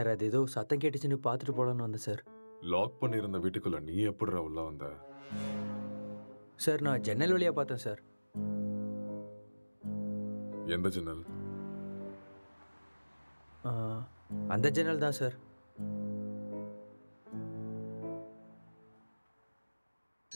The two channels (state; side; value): inverted; both; correlation -1.00